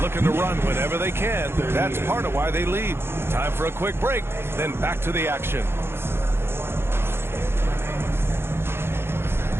Looking to run whenever they can. That's part of why they lead. Time for a quick break, then back to the action.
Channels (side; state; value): left; late; 0.11 ms